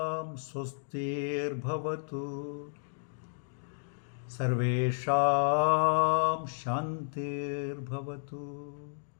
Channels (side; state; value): right; silent; digital silence